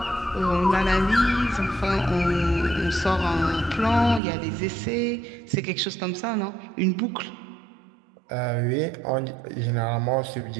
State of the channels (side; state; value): left; drops out; at 4.2 s